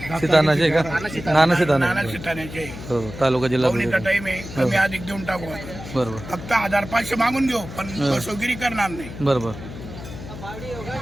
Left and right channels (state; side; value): noise; left; hum, 12 dB below the sound